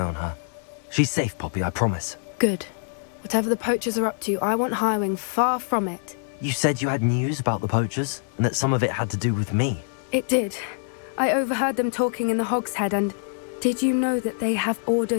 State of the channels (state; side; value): silent; right; 62 dB below the other